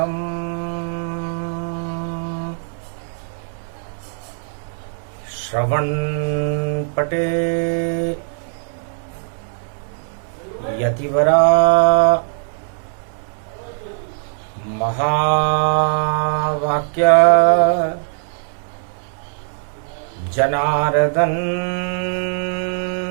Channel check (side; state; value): left; silent; 66 dB below the other